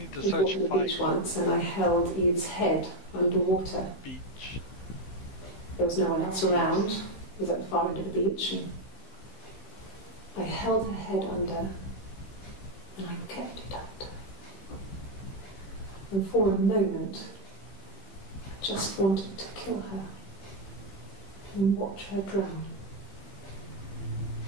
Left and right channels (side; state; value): right; late; 15 ms